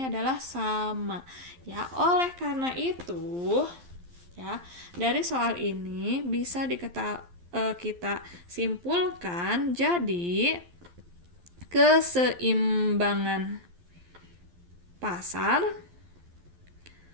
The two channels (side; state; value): left; late; 11 ms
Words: adalah sama. Ya, oleh karena itu ya, dari soal ini bisa kita simpulkan jadi keseimbangan pasar